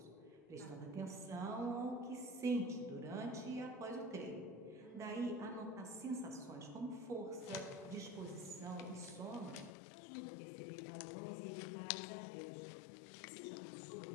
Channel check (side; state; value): right; drops out; at 9.8 s